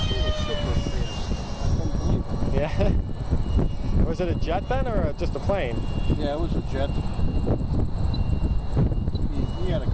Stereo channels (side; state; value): both; identical; correlation 1.00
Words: super fast. I couldn't believe it. Yeah. Was it a jet then, or just a plane? Yeah, it was a jet. He had a